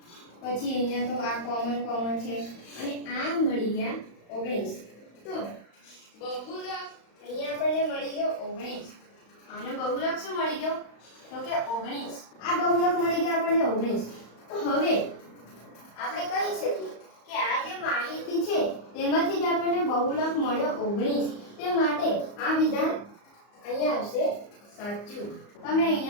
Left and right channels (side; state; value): right; late; 35 ms